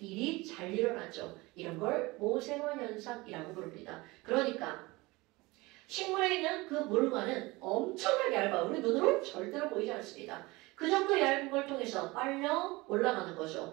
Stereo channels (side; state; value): left; quieter; 22.4 dB